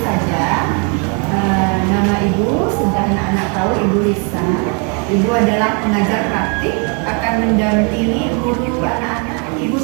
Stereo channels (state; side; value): quieter; left; 36.1 dB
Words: saja. Nama Ibu sudah anak-anak tahu, Ibu Risa. Ibu adalah pengajar praktik, akan mendampingi guru anak-anak. Ibu